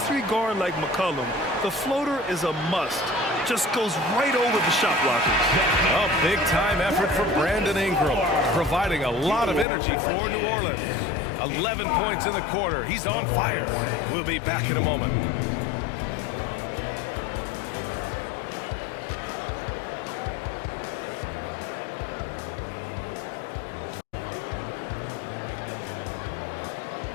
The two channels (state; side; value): drops out; right; at 9.7 s